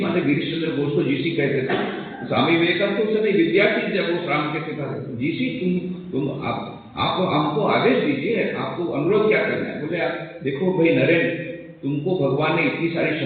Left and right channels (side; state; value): both; identical; correlation 1.00